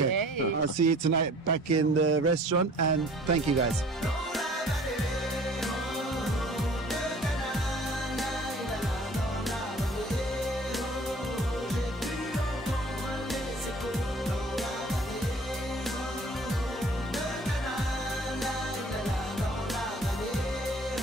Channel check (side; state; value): both; normal; correlation 0.51